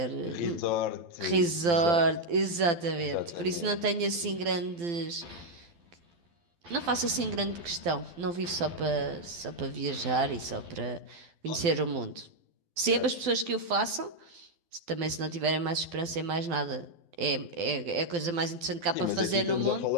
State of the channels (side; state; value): left; late; 12 ms